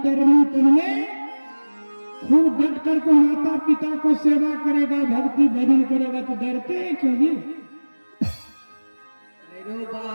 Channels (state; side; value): inverted; both; correlation -1.00